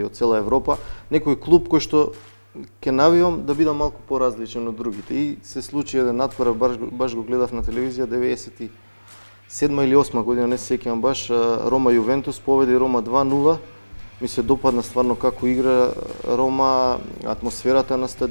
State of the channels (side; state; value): both; inverted; correlation -1.00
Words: од цела Европа, некој клуб кој што ќе навивам да бидам малку поразличен од другите. И се случи еден натпор, баш го гледав на телевизија 97 или 8 година, не се сеќавам баш, Рома Јувентус победи Рома 2:0. Ми се допадна стварно како игра Рома, атмосферата на